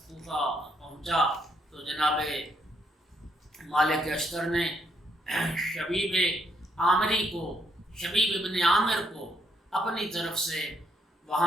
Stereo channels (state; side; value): normal; both; correlation 0.73